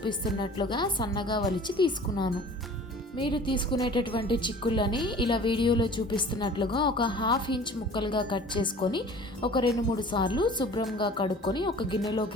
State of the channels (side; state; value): both; normal; correlation 0.45